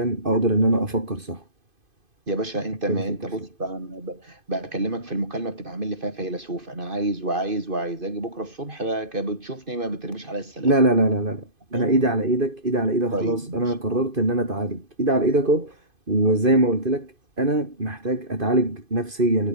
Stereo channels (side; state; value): left; late; 2.5 ms